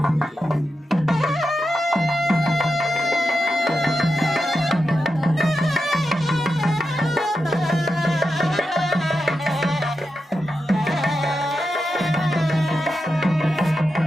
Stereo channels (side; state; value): both; normal; correlation 0.88